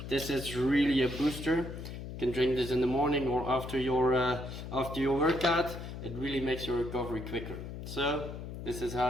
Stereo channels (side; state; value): left; noise; hum, 9 dB below the sound